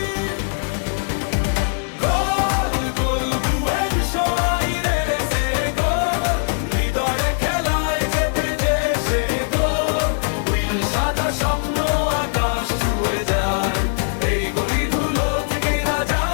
গোল গোল বুয়েন্স আইরেসে গোল, হৃদয়ে খেলায় যেতে যে সে গোল। নীল সাদা স্বপ্ন আকাশ ছুঁয়ে যায়, এই গলি ধুলো থেকেই রাজা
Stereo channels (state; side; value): silent; right; digital silence